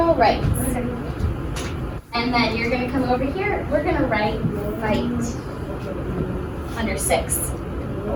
rights. And then you're gonna come over here, we're gonna write fight. Under 6.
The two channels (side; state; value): both; identical; correlation 1.00